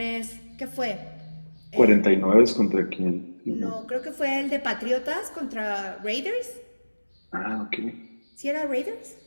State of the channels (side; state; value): both; inverted; correlation -1.00